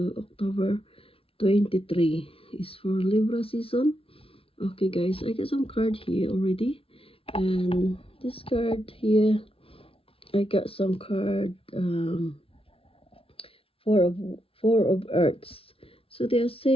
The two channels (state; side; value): late; right; 0.27 ms